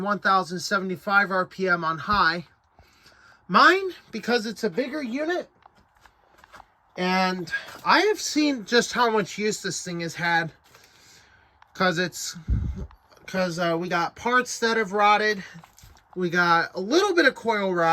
1075 RPM on high. Mine, because it's a bigger unit, and I have seen just how much use this thing has had, because we got parts that have rotted. We got a little bit of coil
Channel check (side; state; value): both; identical; correlation 1.00